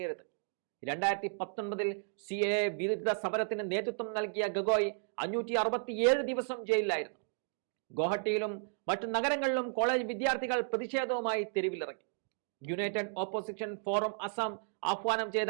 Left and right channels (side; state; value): left; silent; digital silence